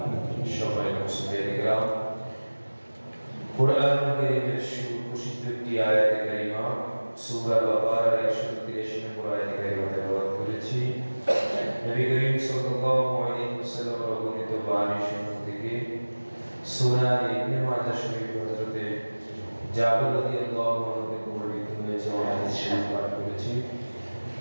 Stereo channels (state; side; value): inverted; both; correlation -1.00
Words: সম্মানিত মুসলিম কিরাম, কোরআন কারীমের সুপ্রসিদ্ধ একটি আয়াতে কারিমা সূরা বাকারার 183 নম্বর আয়াতে কারিমা তেলাওয়াত করেছি। নবী করিম সাল্লাল্লাহু আলাইহি ওয়াসাল্লাম বর্ণিত বাণী শরীফ থেকে সুনান ইবনে মাজাহ শরীফ হযরতে জাবের রাদিয়াল্লাহু আনহু থেকে বর্ণিত হয়েছে ও হাদিস শরীফ পাঠ করেছি।